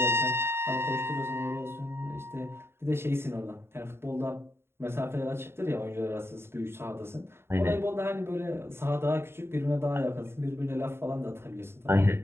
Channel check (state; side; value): late; left; 0.12 ms